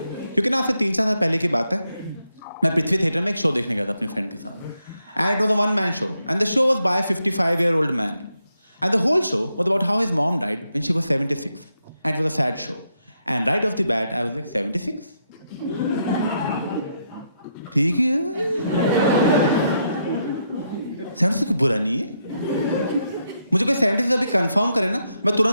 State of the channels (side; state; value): both; inverted; correlation -0.80